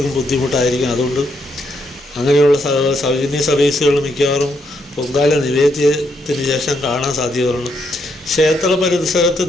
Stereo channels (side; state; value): both; normal; correlation 0.77